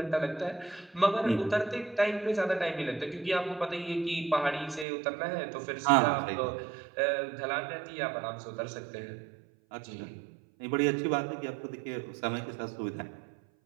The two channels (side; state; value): left; drops out; at 4.9 s